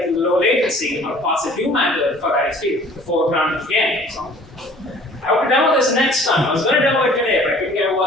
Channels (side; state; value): both; normal; correlation 0.51